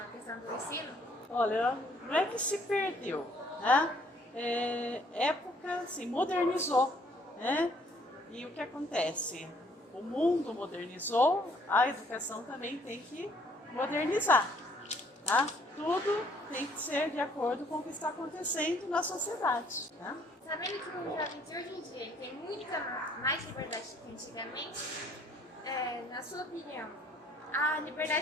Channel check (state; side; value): normal; both; correlation 0.62